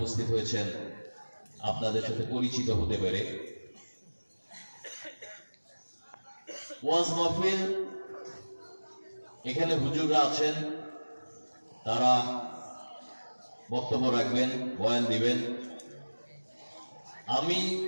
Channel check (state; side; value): inverted; both; correlation -1.00